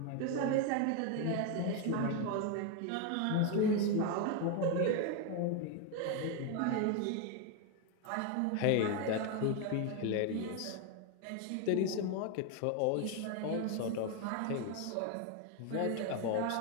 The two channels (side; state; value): both; different; correlation 0.01